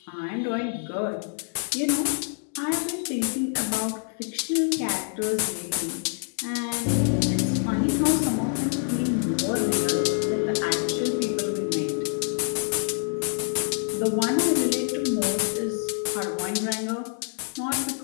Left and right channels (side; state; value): right; silent; 61 dB below the other